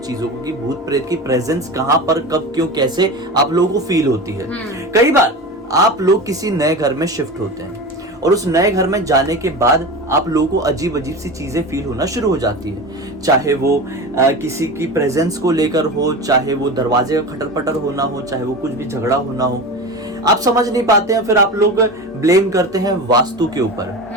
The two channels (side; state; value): both; normal; correlation 0.28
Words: चीजों को कि भूत प्रेत की प्रेजेंस कहां पर, कब, क्यों, कैसे आप लोगों को फील होती है। कई बार आप लोग किसी नए घर में शिफ्ट होते हैं और उस नए घर में जाने के बाद आप लोगों को अजीब अजीब सी चीजें फील होना शुरू हो जाती है, चाहे वो किसी की प्रेजेंस को लेकर हो, चाहे वो दरवाजे का खटर पटर होना हो, चाहे वो कुछ भी झगड़ा होना हो। आप समझ नहीं पाते हैं, फिर आप लोग ब्लेम करते हैं वास्तु के ऊपर,